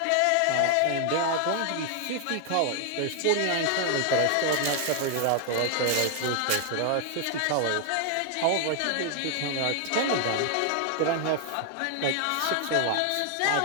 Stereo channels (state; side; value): different; both; correlation 0.00